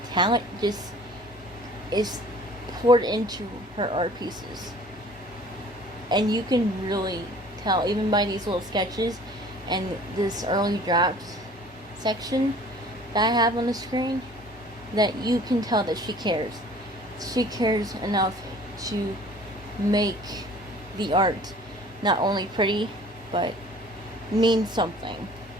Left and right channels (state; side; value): normal; both; correlation 0.49